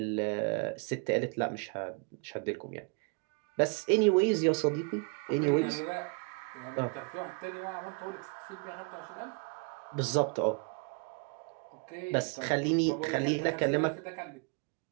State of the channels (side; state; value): left; quieter; 33.8 dB